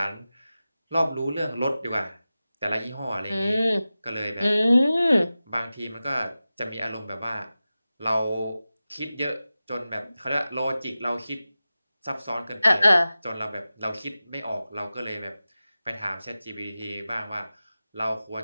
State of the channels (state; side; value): inverted; both; correlation -0.95